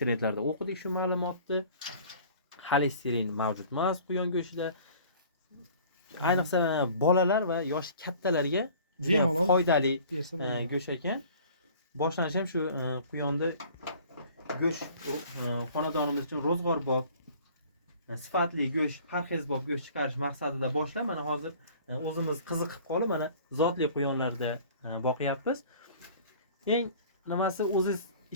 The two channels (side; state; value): both; inverted; correlation -0.49